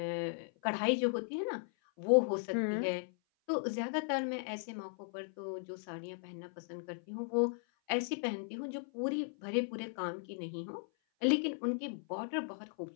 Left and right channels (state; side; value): silent; right; 53 dB below the other